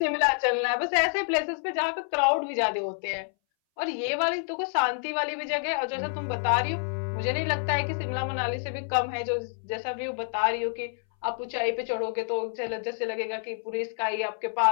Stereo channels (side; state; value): right; silent; 59 dB below the other